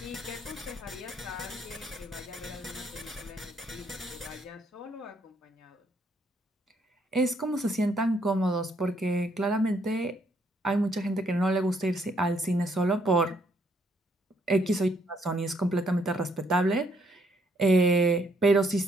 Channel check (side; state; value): both; normal; correlation 0.70